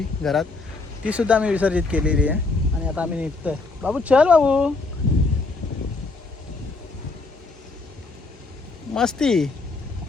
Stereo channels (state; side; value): quieter; right; 3.6 dB